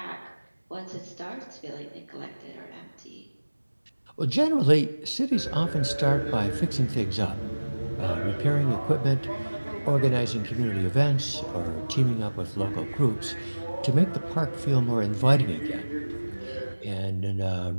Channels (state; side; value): inverted; both; correlation -1.00